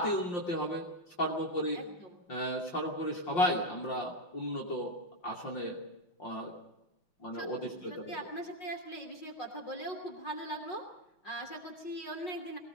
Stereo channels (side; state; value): right; late; 5.6 ms